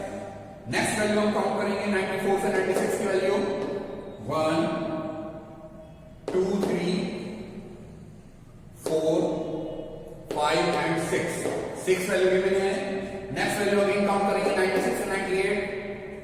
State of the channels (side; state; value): both; identical; correlation 1.00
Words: नेक्स्ट वैल्यू हम काउंट करेंगे 94 से 96 की वैल्यू, 1 2 3 4 5 एंड 6। 6 वैल्यू गिवन है। नेक्स्ट वैल्यू अगेन काउंट करेंगे 96 से 98।